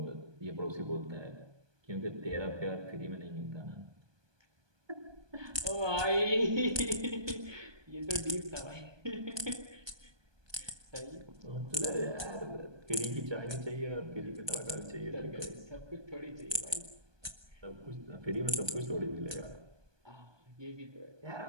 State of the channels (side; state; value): left; late; 1.2 ms